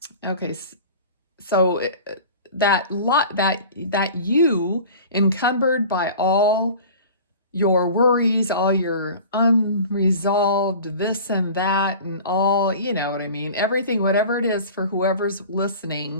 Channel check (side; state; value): both; inverted; correlation -0.40